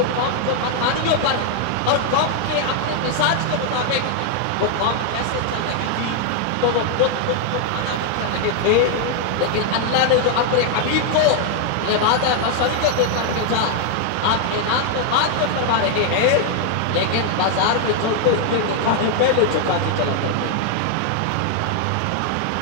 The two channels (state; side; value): different; both; correlation 0.00